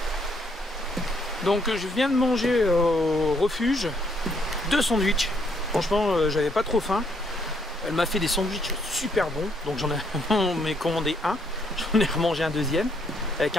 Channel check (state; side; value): normal; both; correlation 0.71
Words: Donc je viens de manger au refuge 2 sandwichs. Franchement j'avais pas trop faim. Elle m'a fait des sandwichs super bons. Donc j'en ai commandé un. J'en ai remangé un deuxième avec